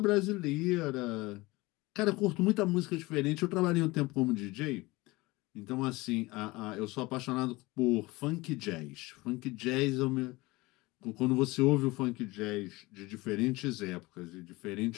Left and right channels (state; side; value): quieter; right; 21.8 dB